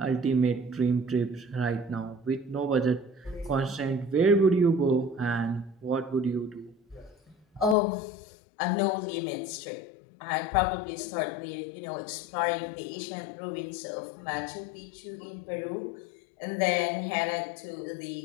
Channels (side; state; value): right; drops out; at 7.8 s